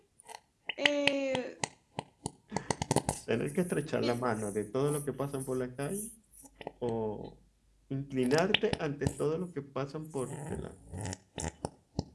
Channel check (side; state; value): both; identical; correlation 1.00